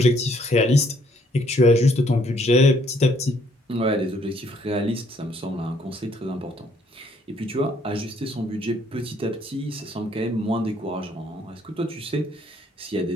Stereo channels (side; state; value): both; normal; correlation 0.66